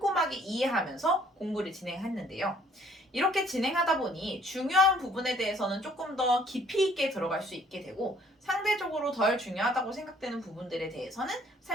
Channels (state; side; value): normal; both; correlation 0.60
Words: 이해하면서 공부를 진행했는데요. 이렇게 진행하다 보니 중요한 부분에 대해서는 조금 더 깊이 있게 들어갈 수 있게 되고 상대적으로 덜 중요하다고 생각되는 부분들에 대해서는